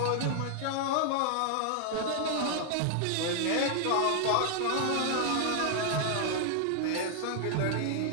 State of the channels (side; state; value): both; different; correlation 0.00